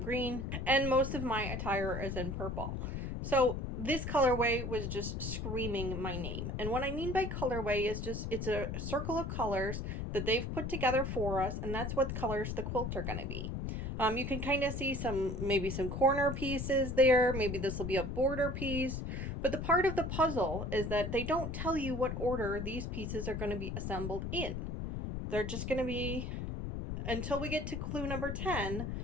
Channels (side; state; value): left; noise; rumble, 4 dB below the sound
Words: green, and most of my attire is in purple. So this colorway was just screaming my name. And what I mean by colorway is just, it's a circle of colors that they've put together for us, and that's what colors the quilt are going to be. You can kind of see maybe some corner pieces there. Maybe this will be a border piece. But the part of the puzzle is that they don't tell you what order these pieces are going to be assembled in. They're just going to be, until we get to clue number 10,